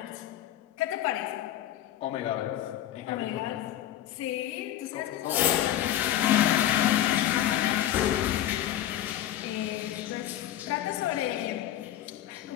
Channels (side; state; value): right; quieter; 12.6 dB